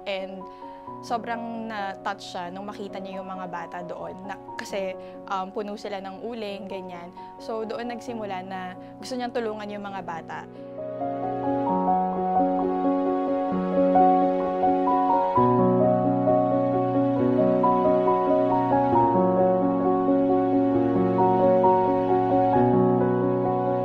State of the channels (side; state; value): both; identical; correlation 1.00